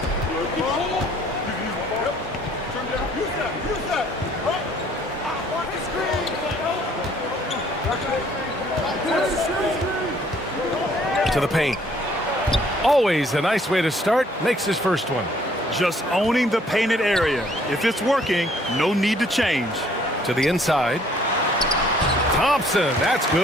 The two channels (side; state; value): both; normal; correlation 0.61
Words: To the paint. Always a nice way to start. Makes his first one. Just owning the painted area. If it's working, no need to change. To the inside. Thompson, that's